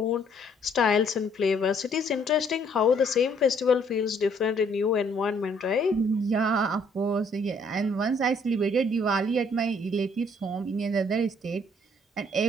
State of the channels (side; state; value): both; normal; correlation 0.64